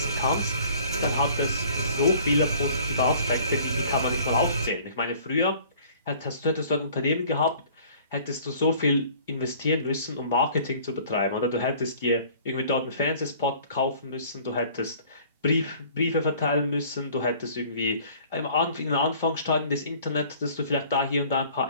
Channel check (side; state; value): both; inverted; correlation -0.52